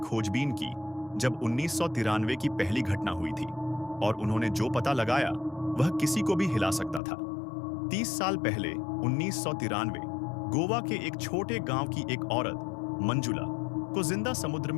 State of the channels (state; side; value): drops out; right; at 7.0 s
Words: की जब 1993 की पहली घटना हुई थी, और उन्होंने जो पता लगाया वह किसी को भी हिला सकता था। 30 साल पहले 1993 गोवा के एक छोटे गांव की एक औरत मंजुला को जिंदा समुद्र